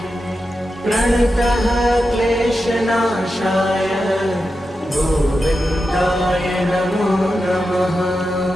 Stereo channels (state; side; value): normal; both; correlation 0.90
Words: प्रणतः क्लेशनाशाय गोविन्दाय नमो नमः।